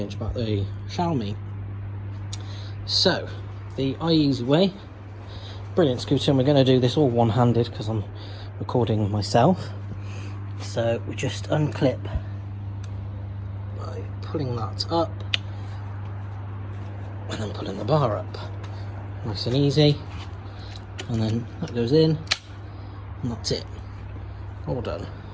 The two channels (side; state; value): both; identical; correlation 1.00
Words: about the Xiaomi. So the iEZway, brilliant scooter, and we're going to do this all one-handed because I'm recording myself. So we just unclip by pulling that up and then pulling the bar up, nice and easy, and then that goes in and that's it, all done.